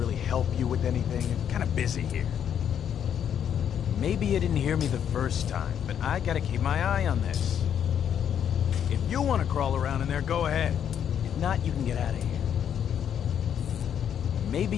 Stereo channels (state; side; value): quieter; right; 8.9 dB